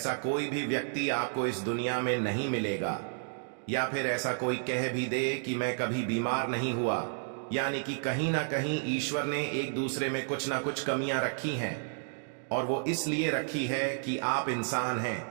कोई भी व्यक्ति आपको इस दुनिया में नहीं मिलेगा। या फिर ऐसा कोई कह भी दे कि मैं कभी बीमार नहीं हुआ, यानी कि कहीं ना कहीं ईश्वर ने एक दूसरे में कुछ ना कुछ कमियां रखी हैं, और वो इसलिए रखी है कि आप इंसान हैं।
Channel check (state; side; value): silent; left; digital silence